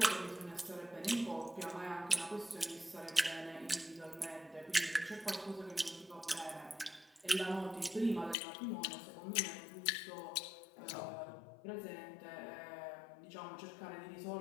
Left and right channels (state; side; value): drops out; right; at 8.3 s